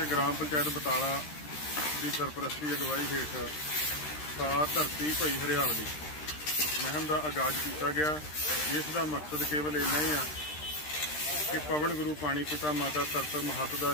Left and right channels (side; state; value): right; late; 13 ms